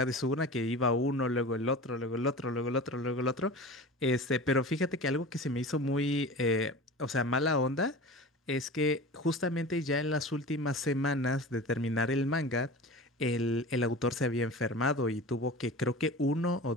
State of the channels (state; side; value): normal; both; correlation 0.35